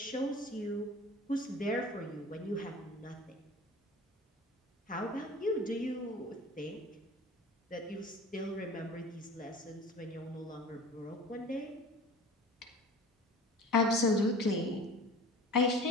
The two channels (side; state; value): both; normal; correlation 0.40